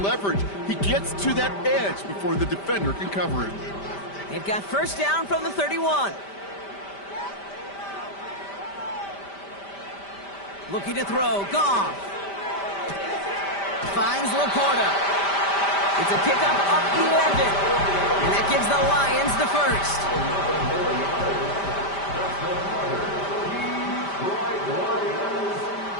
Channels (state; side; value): late; right; 5.1 ms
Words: leverage. He gets to that edge before the defender can cover him. They've got first down from the 31. Looking to throw, Goff. Finds Laporta. It's a pickup of 11. And that gives the Lions the first.